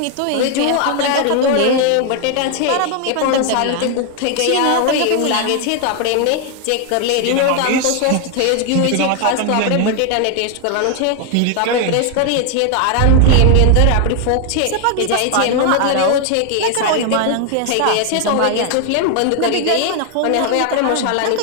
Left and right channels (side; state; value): both; different; correlation 0.00